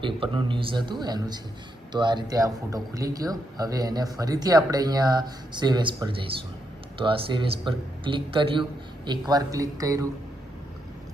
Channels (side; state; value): both; normal; correlation 0.81